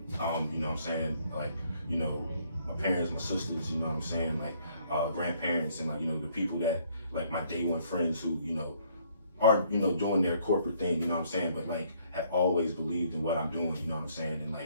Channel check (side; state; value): both; inverted; correlation -0.65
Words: know what I'm saying? Like, you know, my parents, my sisters, you know what I'm saying? Like, grandparents, and like, you know, the people that, like, my day one friends who, you know, are, you know, doing their corporate thing, you know what I'm saying? But like, have always believed in what I'm doing, you know what I'm saying? And